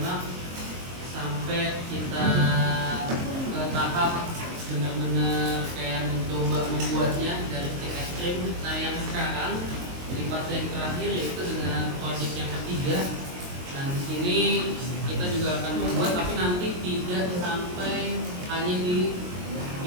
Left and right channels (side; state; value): left; late; 22 ms